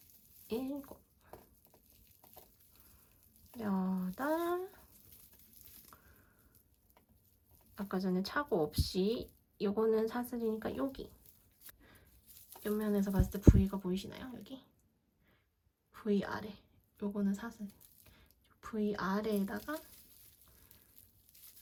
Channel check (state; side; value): identical; both; correlation 1.00